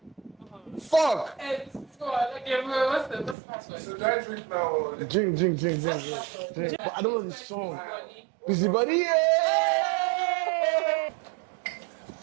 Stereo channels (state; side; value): drops out; left; at 3.4 s